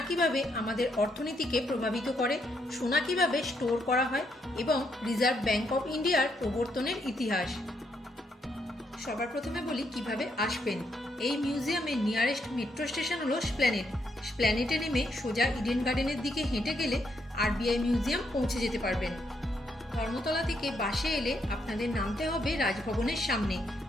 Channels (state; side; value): normal; both; correlation 0.76